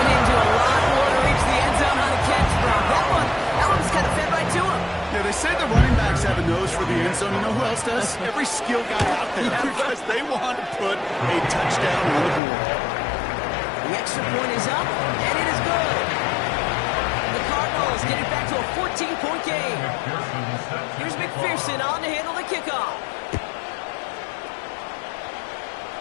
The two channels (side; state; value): right; drops out; at 12.4 s